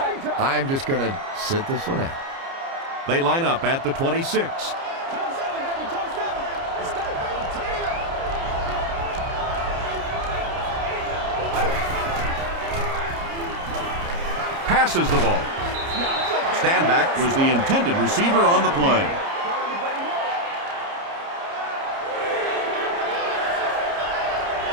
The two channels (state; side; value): late; left; 30 ms